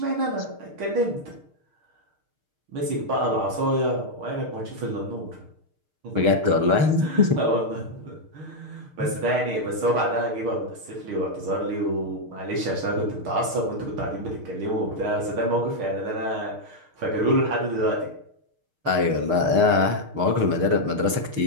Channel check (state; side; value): late; left; 6.5 ms